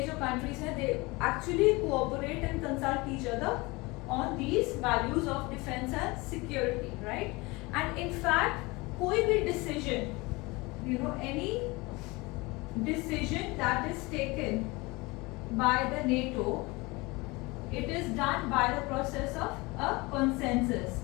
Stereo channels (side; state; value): right; quieter; 24.1 dB